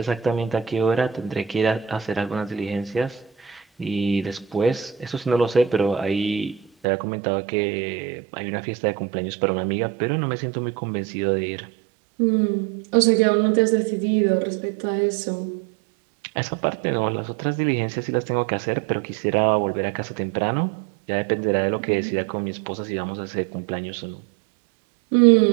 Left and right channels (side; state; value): left; drops out; at 6.9 s